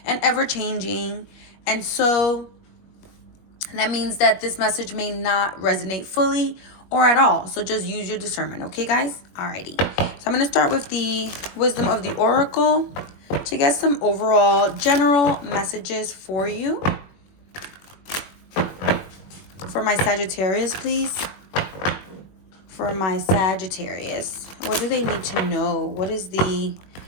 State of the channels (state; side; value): late; right; 21 ms